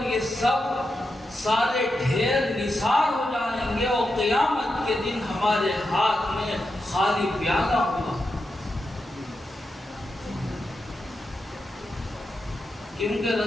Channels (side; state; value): both; normal; correlation 0.87